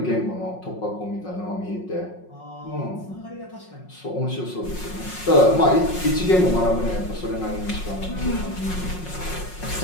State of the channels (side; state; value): right; late; 5.5 ms